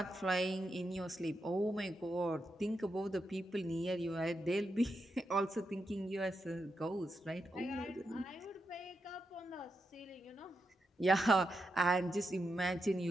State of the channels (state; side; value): normal; both; correlation 0.85